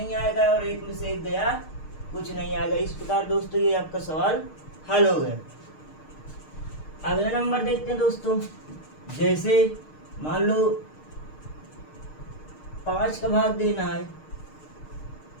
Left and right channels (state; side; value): late; right; 6.5 ms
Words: आएगा, और 1 में से 1 गया, कुछ नहीं आएगा। इस प्रकार दोस्तों ये आपका सवाल हल हो गया। अगला नंबर देखते हैं दोस्तों, जैसे मान लो 5 का भाग देना है